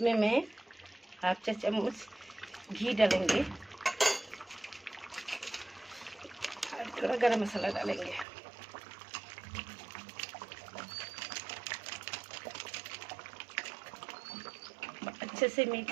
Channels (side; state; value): left; drops out; at 8.2 s